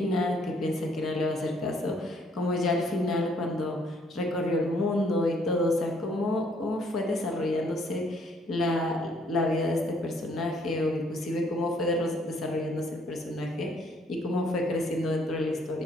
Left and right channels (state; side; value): normal; both; correlation 0.65